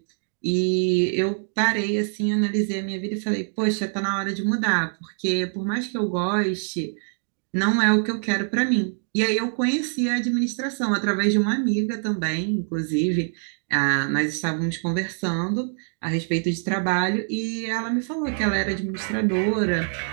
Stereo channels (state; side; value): silent; left; 60 dB below the other